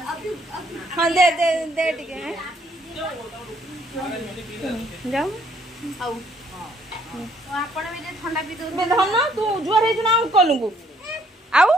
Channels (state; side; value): normal; both; correlation 0.66